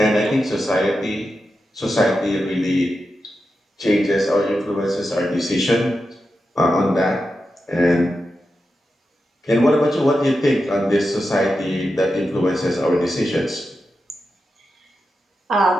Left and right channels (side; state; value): both; normal; correlation 0.89